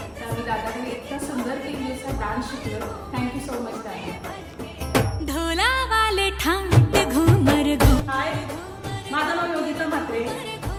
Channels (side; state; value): both; identical; correlation 1.00